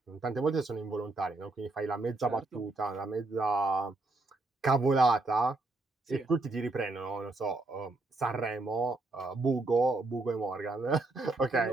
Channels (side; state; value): left; quieter; 3.2 dB